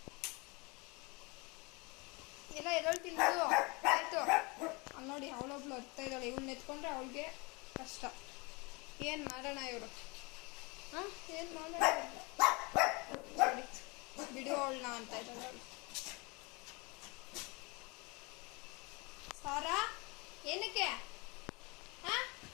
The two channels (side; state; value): right; quieter; 27.9 dB